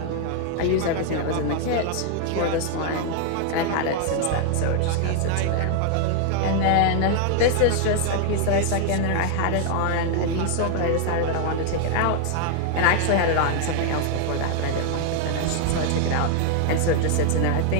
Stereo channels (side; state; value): both; different; correlation 0.00